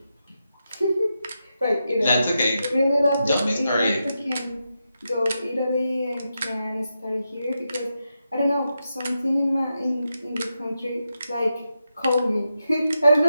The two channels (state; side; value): inverted; both; correlation -0.87